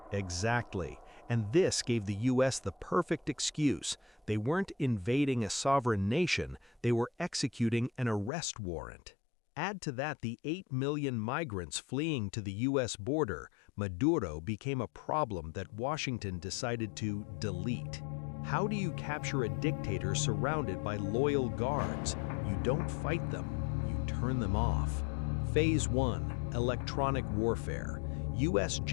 Exactly. And this gave the U.S. the perfect excuse. They weren't invading a sovereign nation, they were executing an arrest warrant. Add to that the 8 million migrants fleeing to the U.S. border, Maduro became a problem that Washington decided to delete. How do you capture a dictator surrounded by loyal guards? You don't fight them, you turn them off. Phase 1, electronic warfare. U.S.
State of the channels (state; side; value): drops out; right; at 8.3 s